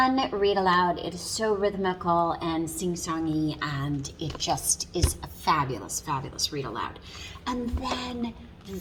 read aloud. It is so rhythmical and sing-songy, and it just is a fabulous read aloud. And then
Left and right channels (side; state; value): both; identical; correlation 1.00